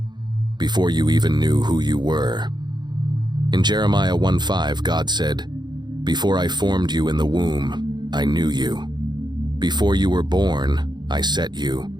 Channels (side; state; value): left; late; 0.21 ms